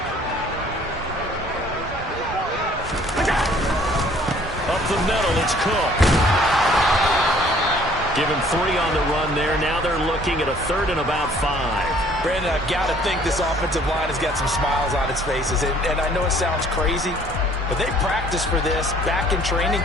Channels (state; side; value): normal; both; correlation 0.57